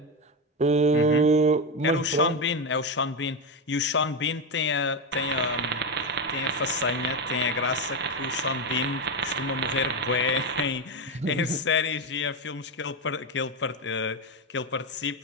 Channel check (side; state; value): both; normal; correlation 0.11